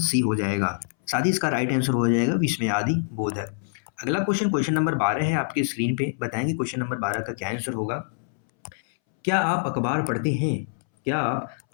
हो जाएगा। साथ ही इसका राइट आंसर हो जाएगा विस्मयादि बोधक। अगला क्वेश्चन, क्वेश्चन नंबर 12 है आपके स्क्रीन पे, बताएंगे क्वेश्चन नंबर 12 का क्या आंसर होगा। क्या आप अखबार पढ़ते हैं? क्या आप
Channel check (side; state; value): right; silent; 62 dB below the other